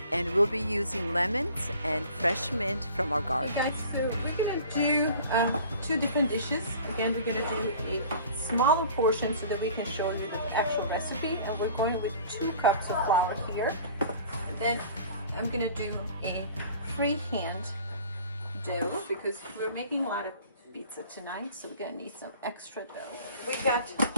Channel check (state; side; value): inverted; both; correlation -0.46